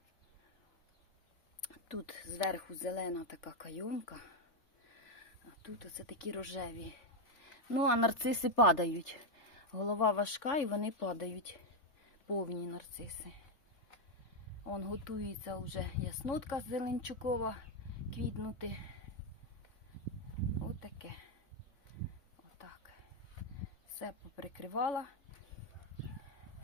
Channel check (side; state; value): right; late; 3.4 ms